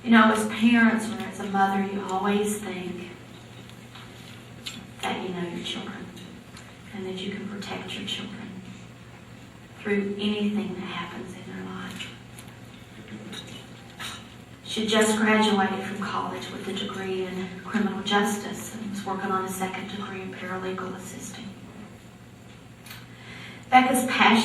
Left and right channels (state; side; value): identical; both; correlation 1.00